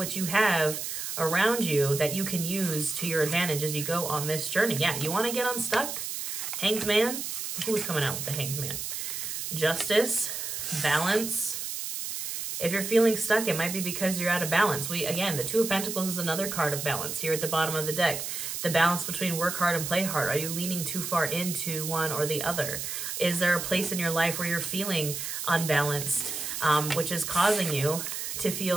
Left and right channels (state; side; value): noise; right; hiss, 5 dB below the sound